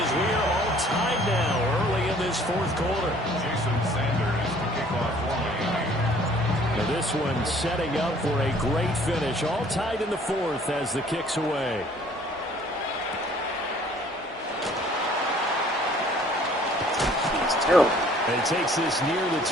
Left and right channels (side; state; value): both; normal; correlation 0.56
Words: we are all tied now early in this 4th quarter. Jason Sanders to kick off for Miami. Now this one setting up for a great finish. All tied in the 4th as the kick's away. It's terrible. And takes this near the